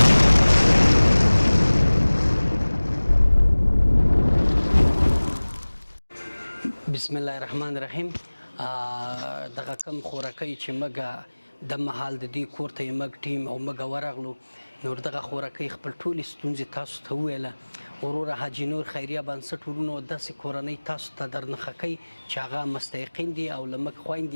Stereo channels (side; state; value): both; inverted; correlation -1.00